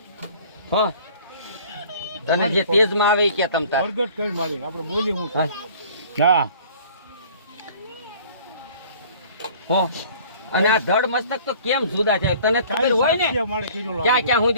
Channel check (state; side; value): inverted; both; correlation -0.50